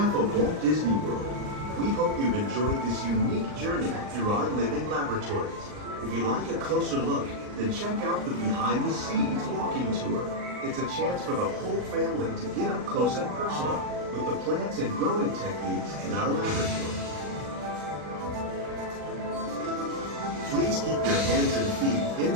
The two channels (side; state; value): left; late; 39 ms